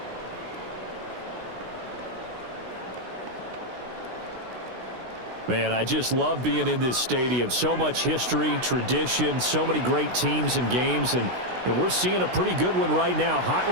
Man, I just love being in this stadium. So much history, tradition, so many great teams and games, and we're seeing a pretty good one right now,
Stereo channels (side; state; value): left; late; 16 ms